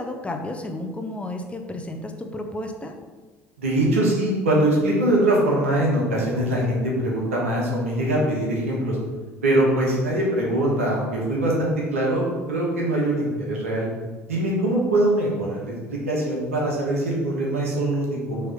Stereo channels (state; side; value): normal; both; correlation 0.43